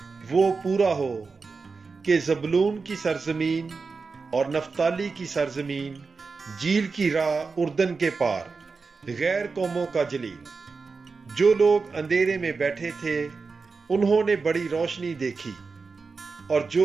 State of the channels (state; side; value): quieter; left; 4.5 dB